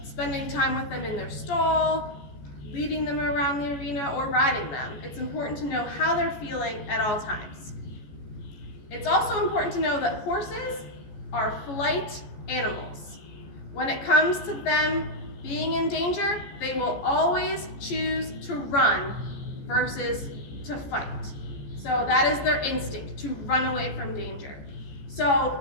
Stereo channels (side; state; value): right; late; 14 ms